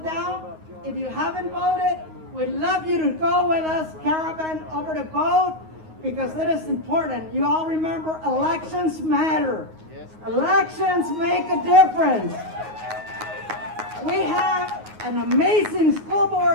If you haven't voted, we'd love you to go with us, caravan, over to vote, because it is important. You all remember, elections matter. Elections make a difference. We have an amazing school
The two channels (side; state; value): left; late; 9.5 ms